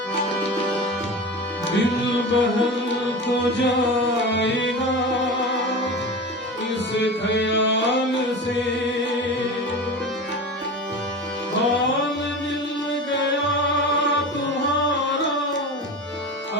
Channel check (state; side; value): normal; both; correlation 0.29